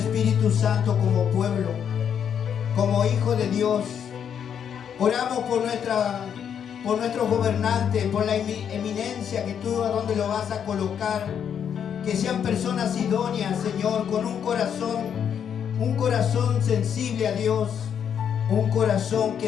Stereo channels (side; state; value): right; quieter; 8.2 dB